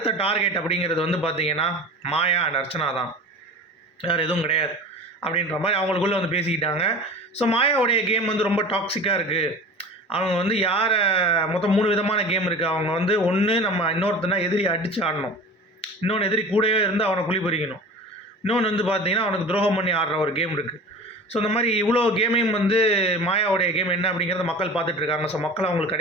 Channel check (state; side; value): normal; both; correlation 0.37